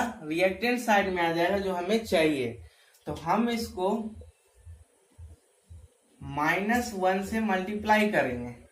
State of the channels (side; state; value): both; identical; correlation 1.00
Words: रिएक्टेंट साइड में आ जाएगा जो हमें चाहिए। तो हम इसको -1 से मल्टीप्लाई करेंगे